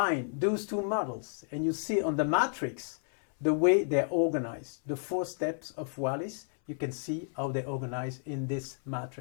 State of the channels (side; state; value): right; silent; 57 dB below the other